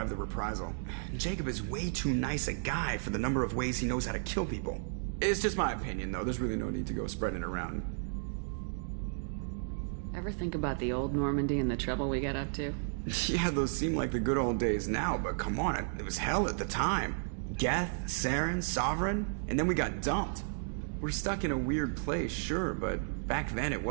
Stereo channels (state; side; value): silent; left; digital silence